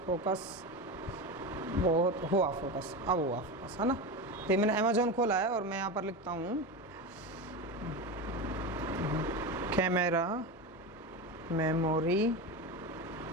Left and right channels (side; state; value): both; normal; correlation 0.21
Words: फोकस, बहुत हुआ फोकस, अब हुआ फोकस, है ना। तो मैंने अमेजोन खोला है और मैं यहाँ पर लिखता हूँ कैमरा मेमोरी